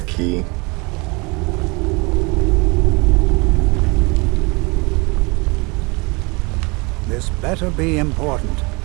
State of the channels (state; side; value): quieter; left; 27.8 dB